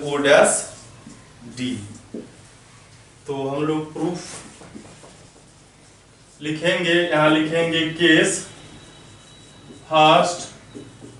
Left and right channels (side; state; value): both; identical; correlation 1.00